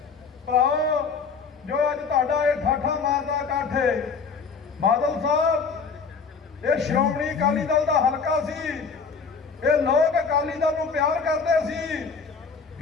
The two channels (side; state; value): right; quieter; 5.3 dB